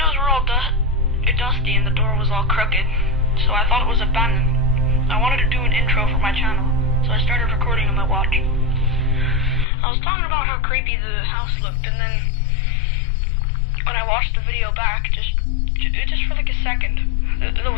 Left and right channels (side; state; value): right; drops out; at 9.7 s